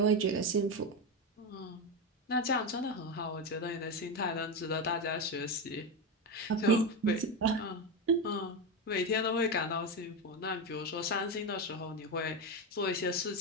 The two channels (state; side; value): normal; both; correlation 0.13